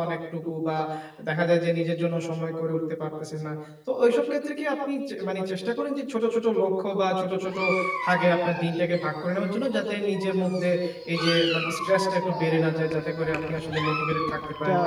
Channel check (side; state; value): both; identical; correlation 1.00